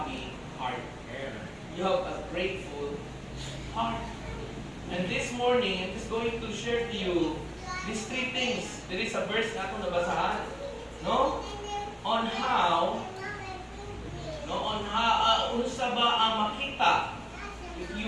heart. You have a grateful heart. And this morning, I'm just going to share to you these three things. There is a verse na ako nabasahan, no? On how unsa ba ang makita if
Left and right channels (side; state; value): both; identical; correlation 1.00